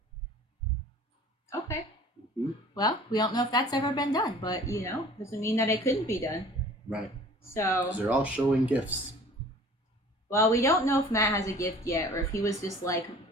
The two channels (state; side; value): normal; both; correlation 0.47